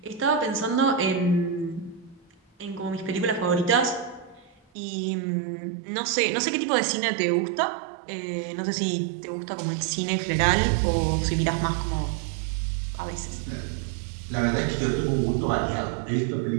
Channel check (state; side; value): drops out; left; at 4.5 s